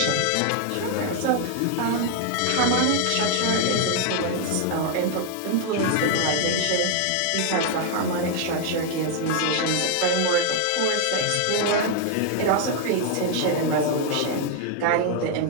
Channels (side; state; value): both; different; correlation 0.00